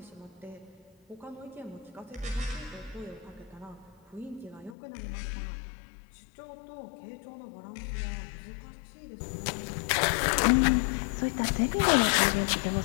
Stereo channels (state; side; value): drops out; right; at 4.8 s